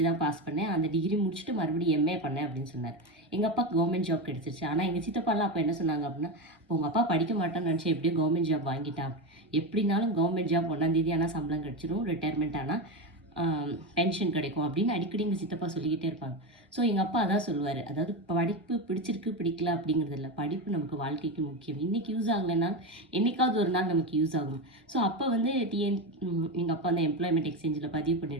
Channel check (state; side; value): normal; both; correlation 0.16